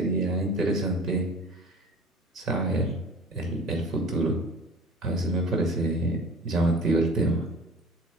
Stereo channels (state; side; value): normal; both; correlation 0.43